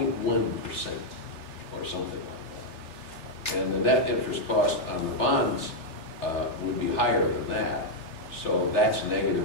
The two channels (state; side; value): late; right; 3.4 ms